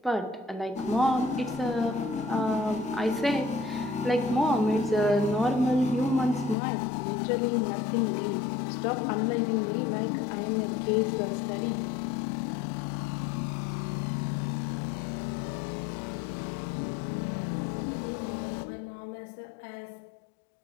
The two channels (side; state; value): right; drops out; at 6.6 s